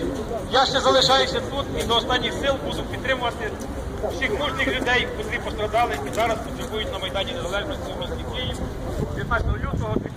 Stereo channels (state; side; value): identical; both; correlation 1.00